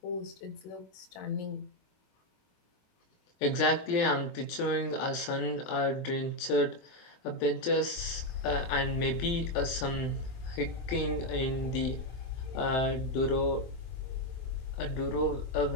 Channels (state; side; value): late; right; 23 ms